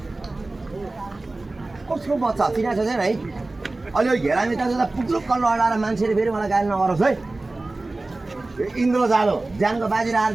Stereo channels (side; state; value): left; quieter; 3.1 dB